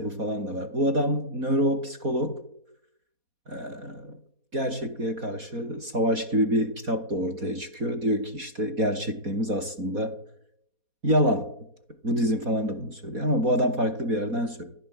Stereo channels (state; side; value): late; left; 4.2 ms